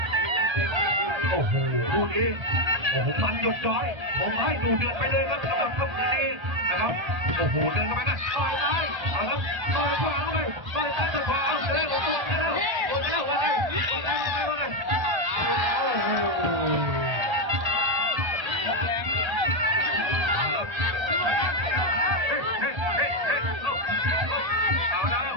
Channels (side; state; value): left; late; 1.3 ms